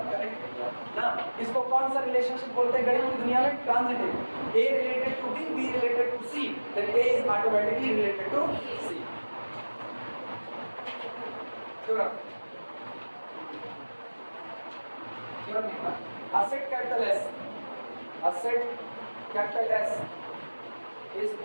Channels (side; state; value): both; inverted; correlation -1.00